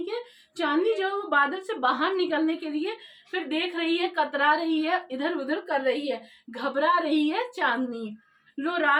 कि चांदनी जो है वो बादल से बाहर निकलने के लिए फिर देख रही है, कतरा रही है, इधर उधर कर रही है, घबरा रही है चांदनी। लो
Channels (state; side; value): identical; both; correlation 1.00